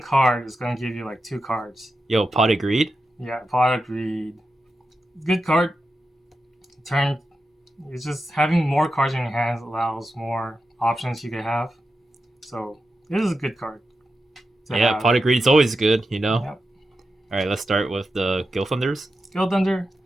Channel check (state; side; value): normal; both; correlation 0.90